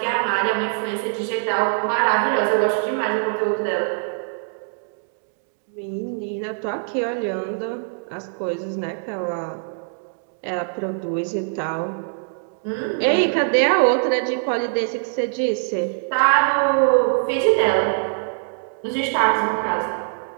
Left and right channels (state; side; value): silent; left; digital silence